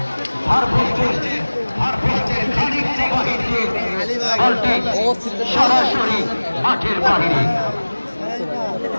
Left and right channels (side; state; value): both; inverted; correlation -1.00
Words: সরাসরি মাঠের বাহিরে।